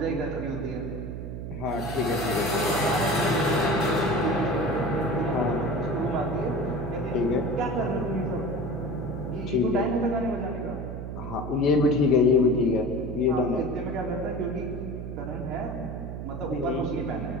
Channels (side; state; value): right; noise; hum, 7 dB below the sound